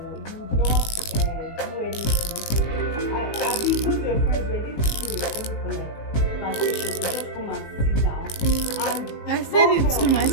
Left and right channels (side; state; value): right; late; 19 ms